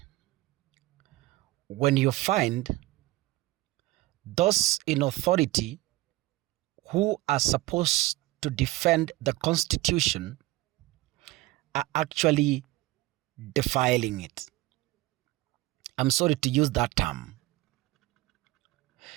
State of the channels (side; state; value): left; quieter; 18.6 dB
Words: When you find those in authority who are supposed to defend the Constitution are actually defiling it. I'm sorry to use that term.